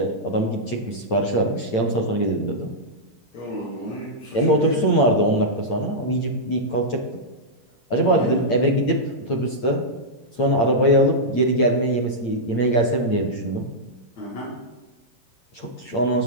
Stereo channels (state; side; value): late; right; 8.8 ms